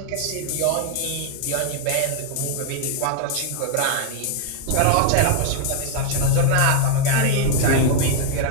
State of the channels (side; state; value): both; different; correlation 0.00